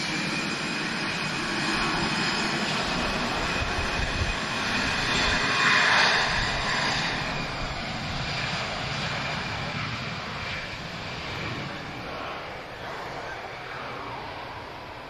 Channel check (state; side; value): identical; both; correlation 1.00